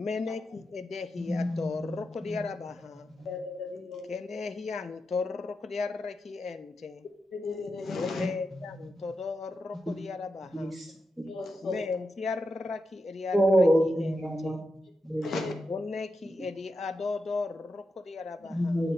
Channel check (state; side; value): normal; both; correlation 0.88